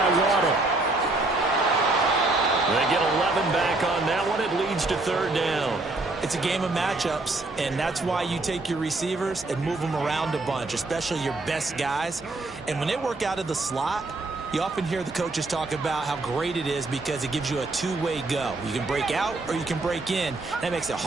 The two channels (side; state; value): left; quieter; 3.1 dB